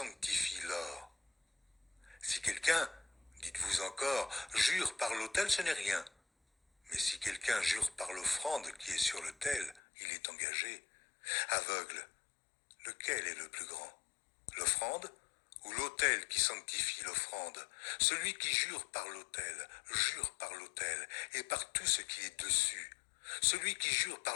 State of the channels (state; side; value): drops out; right; at 9.8 s